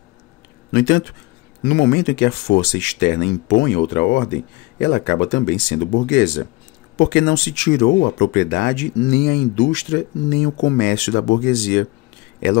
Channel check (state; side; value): quieter; right; 22.6 dB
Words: No entanto, no momento em que a força externa impõe outra ordem, ela acaba também sendo burguesa, porque não se tirou a propriedade, nem a indústria, nem o comércio da burguesia. Ela